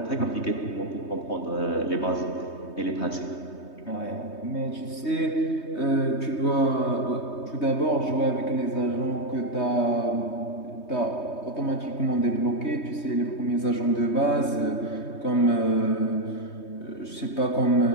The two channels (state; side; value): late; right; 3.2 ms